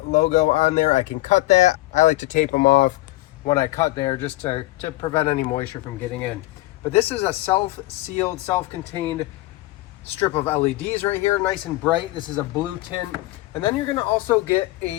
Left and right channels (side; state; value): right; quieter; 19.0 dB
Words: logo on there. I can cut that. I like to tape them off when I cut there just to prevent any moisture from getting in. But this is a self-sealed, self-contained strip of LEDs right here, nice and bright. This is a blue tint. And then you're gonna also get